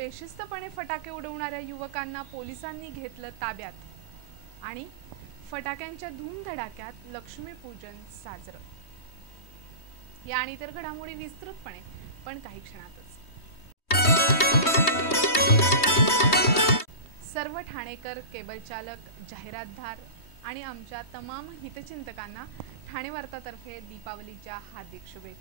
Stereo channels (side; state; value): right; late; 3.2 ms